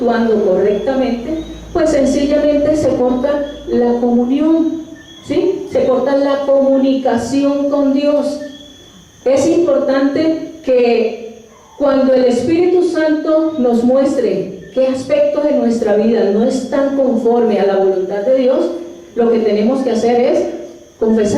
correctamente, pues sencillamente se corta la comunión, ¿sí? Se corta la comunicación con Dios. Es importante que cuando el Espíritu Santo nos muestre qué aspectos de nuestra vida no están conforme a la voluntad de Dios, lo que tenemos que hacer es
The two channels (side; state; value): both; identical; correlation 1.00